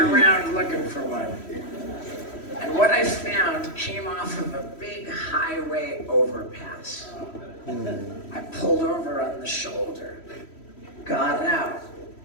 looking for one. And what I found came off of a big highway overpass. I pulled over on the shoulder, got out.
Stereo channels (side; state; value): right; late; 3.1 ms